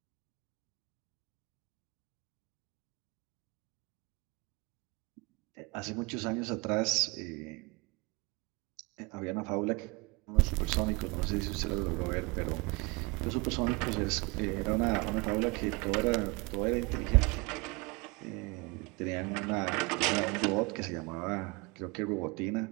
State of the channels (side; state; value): left; quieter; 26.9 dB